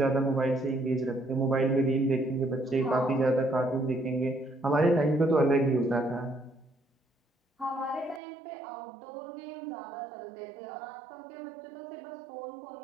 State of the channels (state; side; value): drops out; left; at 8.2 s